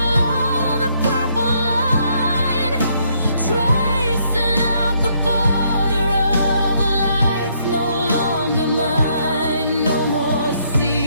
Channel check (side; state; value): both; inverted; correlation -0.71